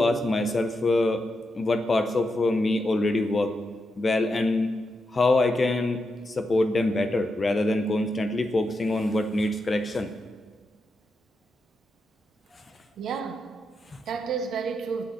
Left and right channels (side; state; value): both; normal; correlation 0.85